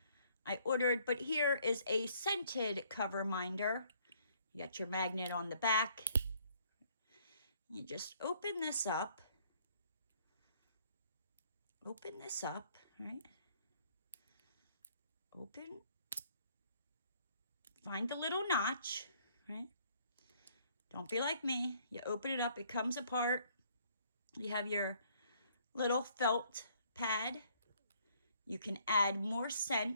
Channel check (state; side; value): inverted; both; correlation -0.63